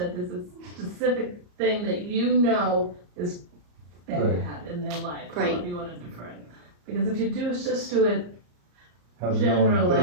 there's a specific thing that you know is bad in their life. Right. However you want to defer it. Because if you just do it, how's it going? They generally,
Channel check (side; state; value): left; late; 34 ms